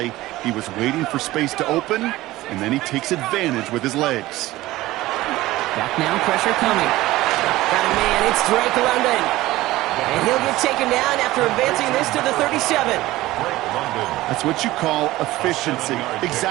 he was waiting for space to open, and then he takes advantage with his legs. Back now, pressure coming. Got a man, it's Drake London. And he'll get taken down after advancing this to the 37. That's what you call efficiency.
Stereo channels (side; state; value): left; quieter; 17.3 dB